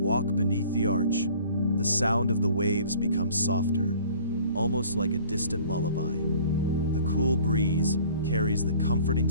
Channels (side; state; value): both; inverted; correlation -0.50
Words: beneath the arch, the sound of the waves becomes softer, almost like a distant lullaby. The cool breeze carries the comforting